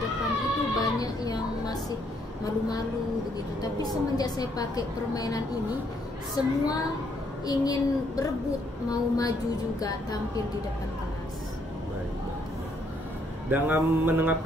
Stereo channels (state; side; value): normal; both; correlation 0.70